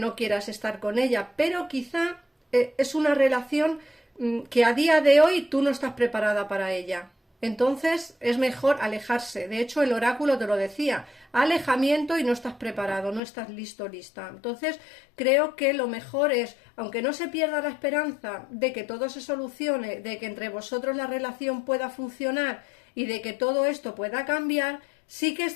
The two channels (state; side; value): drops out; right; at 13.2 s